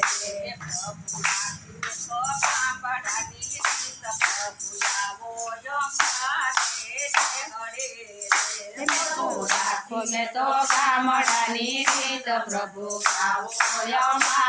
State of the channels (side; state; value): both; identical; correlation 1.00